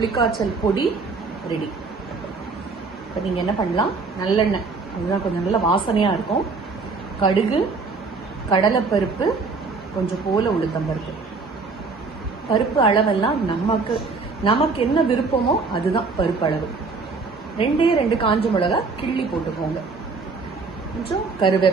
பொடி ரெடி. இப்போ நீங்கள் என்ன பண்ணலாம், நல்லெண்ணெய், அதுதான் கொஞ்சம் நல்ல வாசனையாக இருக்கும். கடுகு, கடலைப்பருப்பு, கொஞ்சம் போல உளுத்தம்பருப்பு. பருப்பு அளவெல்லாம் நமக்கு என்ன விருப்பமோ அதுதான் பருப்பு அளவு. 2 காஞ்ச மிளகா கிள்ளி போட்டுக்கோங்க. கொஞ்சம்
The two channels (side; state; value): left; quieter; 4.3 dB